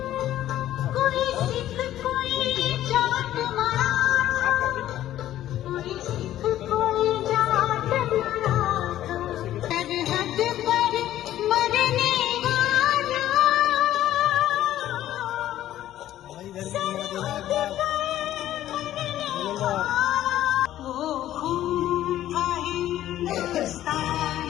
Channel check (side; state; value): right; quieter; 12.9 dB